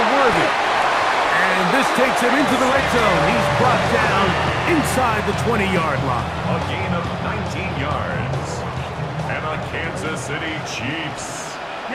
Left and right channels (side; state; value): both; identical; correlation 1.00